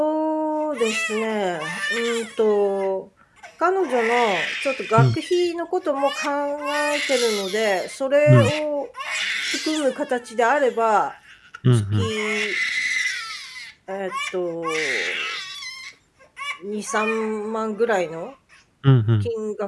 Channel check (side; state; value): both; identical; correlation 1.00